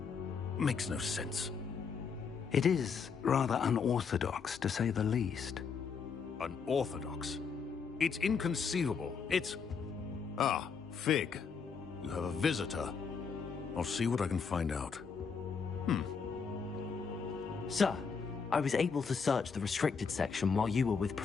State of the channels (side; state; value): right; quieter; 5.8 dB